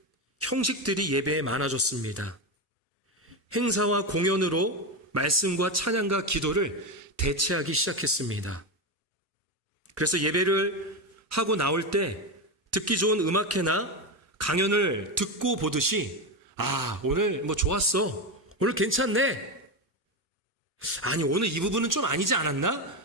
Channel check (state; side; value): normal; both; correlation 0.14